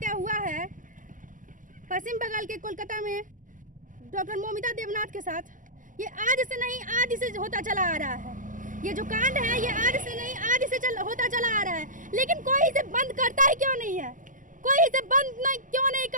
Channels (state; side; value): late; left; 0.38 ms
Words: हुआ है पश्चिम बंगाल के कोलकाता में डॉक्टर मोमिता देवनाथ के साथ, ये आज से नहीं आदि से होता चला आ रहा है। ये जो कांड है ये आज से नहीं आदि से होता चला आ रहा है, लेकिन कोई इसे बंद करता ही क्यों नहीं है? कोई इसे बंद क्यों नहीं